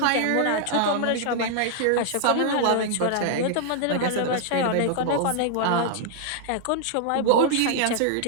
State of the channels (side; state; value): both; different; correlation -0.01